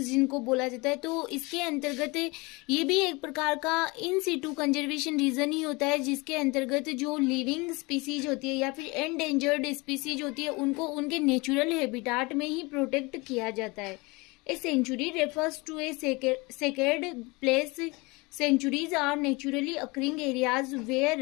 बोला जाता है। तो इसके अंतर्गत ये भी एक प्रकार का इन सिटू कंजर्वेशन रीजन ही होता है जिसके अंतर्गत जो लिविंग स्पीसीज होती है या फिर एंडेंजर्ड स्पीसीज होती है उनको उनके नेचुरल हैबिटाट में ही प्रोटेक्ट किया जाता है। A sanctuary refers to a sacred place. Sanctuaries are naturally occurring areas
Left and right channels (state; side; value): quieter; right; 25.5 dB